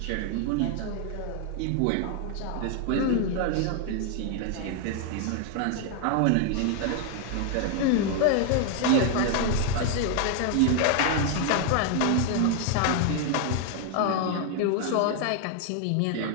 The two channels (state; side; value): different; both; correlation 0.00